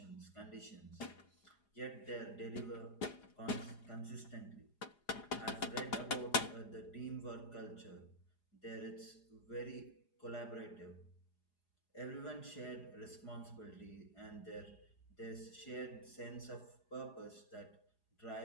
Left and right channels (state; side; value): late; right; 4.9 ms